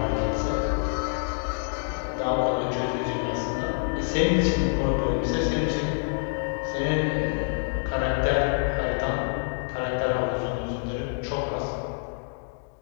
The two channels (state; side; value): silent; right; digital silence